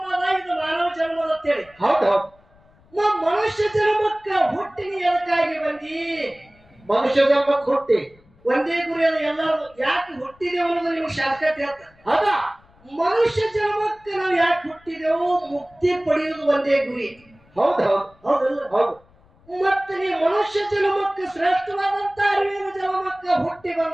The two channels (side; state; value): left; noise; rumble, 30 dB below the sound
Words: ಇದು ಮಾನವ ಜನ್ಮದ ಅಂತೇಳಿ. ಹೌದು ಮನುಷ್ಯ ಜನ್ಮಕ್ಕ ಹುಟ್ಟಿನ ಎದಕ್ಕಾಗಿ ಬಂದಿ? ಮನುಷ್ಯ ಜನ್ಮಕ್ಕೆ ಹುಟ್ಟಿ ಒಂದೇ ಗುರಿ ಅದು ಎಲ್ಲರೂ. ಯಾಕೆ ಹುಟ್ಟಿದೆ ಅನ್ನೋದು ನಿಮ್ಗೆ ಶಾರ್ಟ್ಕಟ್ ಹೇಳ್ತಾರೆ. ಹೌದಾ ಮನುಷ್ಯ ಜನ್ಮಕ್ಕೆ ನಾವು ಯಾಕೆ ಹುಟ್ಟಿದೆವು? ಮುಕ್ತಿ ಪಡೆಯುವುದು ಒಂದೇ ಗುರಿ. ಹೌದು ಹೌದು ಹೌದಲ್ಲ? ಹೌದು. ಮತ್ತೆ ನೀ ಮನುಷ್ಯ ಜನ್ಮಕ್ಕೆ ಶ್ರೇಷ್ಠವಾದಂತ ಅರಿವಿನ ಜನ್ಮಕ್ಕೆ ಹುಟ್ಟಿ